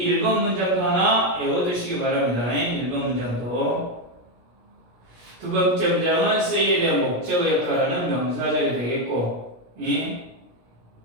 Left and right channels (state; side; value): late; left; 17 ms